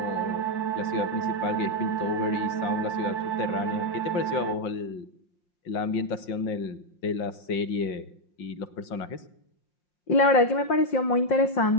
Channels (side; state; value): right; late; 5.6 ms